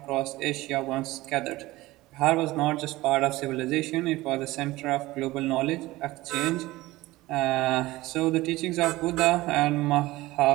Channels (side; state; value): left; quieter; 18.8 dB